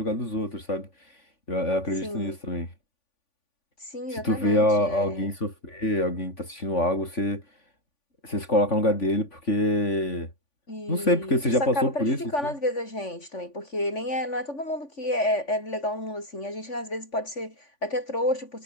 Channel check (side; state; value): right; late; 3.5 ms